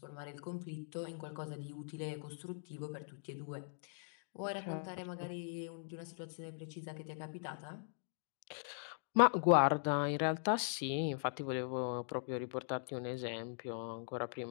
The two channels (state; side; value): silent; right; digital silence